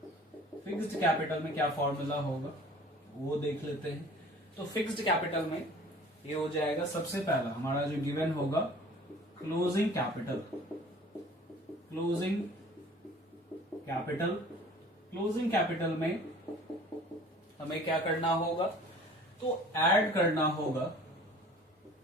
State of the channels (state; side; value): normal; both; correlation 0.48